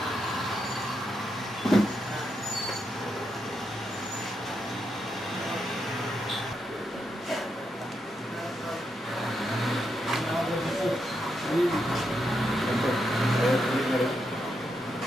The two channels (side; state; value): both; normal; correlation 0.82